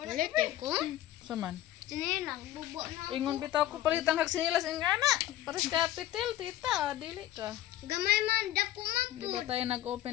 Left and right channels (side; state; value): right; quieter; 13.7 dB